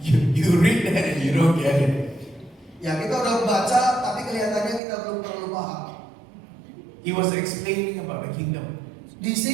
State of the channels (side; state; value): left; drops out; at 4.8 s